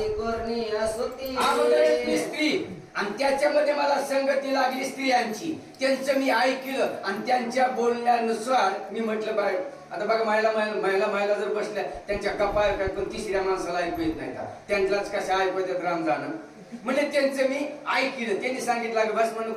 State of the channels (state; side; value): identical; both; correlation 1.00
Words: करणी असती. स्त्री आणि त्याच्यामध्ये मला संगती लागली स्त्रियांची. त्यांचं मी ऐकलं आणि त्यांच्या बोलण्यानुसार मी म्हटलं बाय आता बघा महिला जर बसल्या त्यांच्या कपाळ काय पण तिसऱ्या माणसाला ऐकू येत नाही का? त्यांनाच कशा ऐकू येतात राम जाणं. म्हणजे त्यांचं मी ऐकलं. त्यांनी सांगितलं भस्मानं